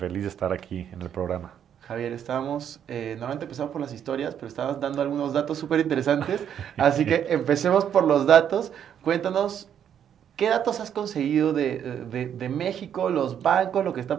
de estar aquí en el programa. Javier, normalmente empezamos por las historias, pero estábamos dando algunos datos súper interesantes. Así que empecemos por los datos. Cuéntanos, ¿qué datos has conseguido de México, los bancos, lo que está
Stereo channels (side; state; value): left; quieter; 9.1 dB